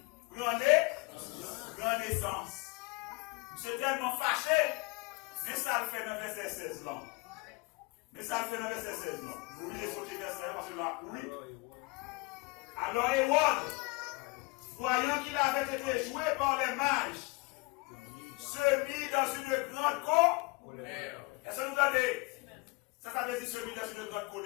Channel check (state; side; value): quieter; right; 26.6 dB